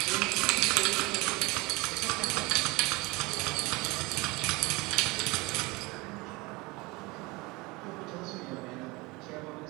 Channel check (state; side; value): quieter; left; 24.0 dB